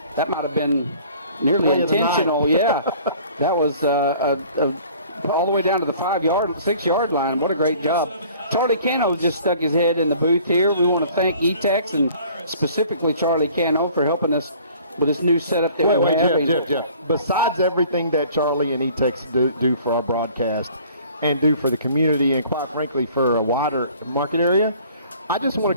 That might have been nearly intentional. Yeah. That was all the way down to the 6-yard line. What a great job. Charlie Cano just stuck his head in the booth here. We want to thank E-Tex and specifically Charlie Cano for helping us with this new setup that we're having. Jeff. Besides everything that Charlie and E-Tex do for our broadcast and do for the community and, quite frankly, for a wider market area, I just want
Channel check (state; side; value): inverted; both; correlation -0.52